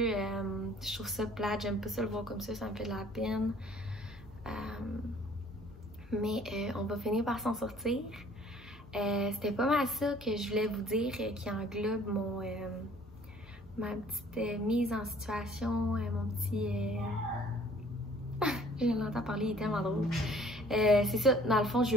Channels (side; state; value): both; normal; correlation 0.55